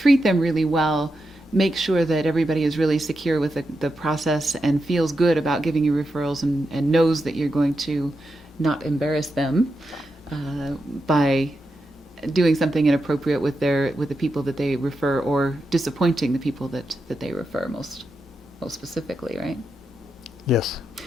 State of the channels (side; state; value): both; normal; correlation 0.87